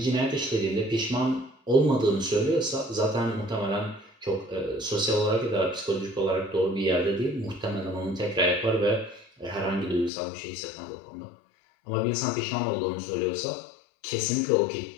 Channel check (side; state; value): right; drops out; at 10.1 s